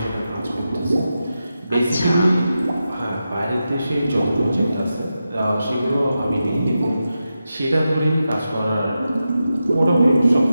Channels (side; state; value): both; inverted; correlation -0.90